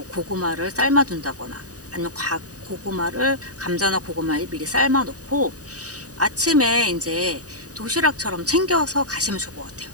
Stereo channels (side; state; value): left; late; 0.67 ms